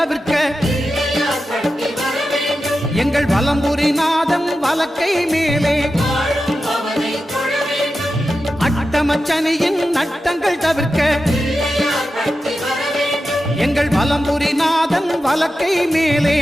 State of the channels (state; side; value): normal; both; correlation 0.91